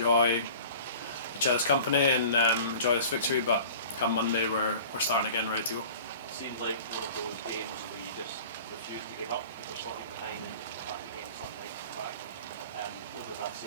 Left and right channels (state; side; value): inverted; both; correlation -0.43